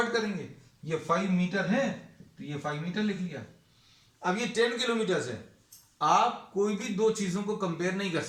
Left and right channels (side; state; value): both; identical; correlation 1.00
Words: करेंगे। ये 5 मीटर है तो ये 5 मीटर लिख लिया। अब ये 10 किलोमीटर है, आप कोई भी दो चीजों को कंपेयर नहीं कर